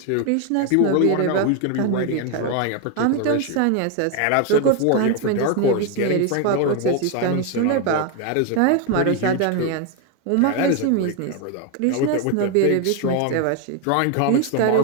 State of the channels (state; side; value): different; both; correlation 0.01